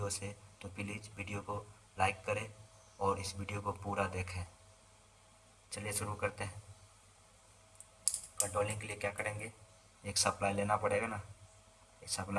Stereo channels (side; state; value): both; identical; correlation 1.00